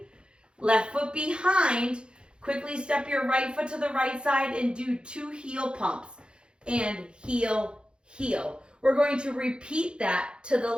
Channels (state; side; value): late; left; 0.053 ms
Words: left foot behind, quickly step your right foot to the right side and do 2 heel pumps, and heel, heel. We're going to repeat that to the